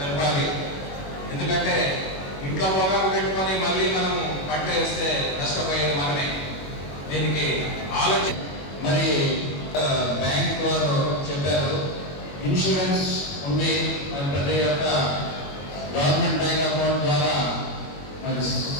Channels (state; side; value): late; right; 21 ms